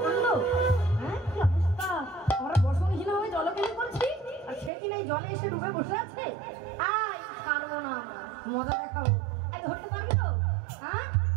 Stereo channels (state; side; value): drops out; left; at 4.7 s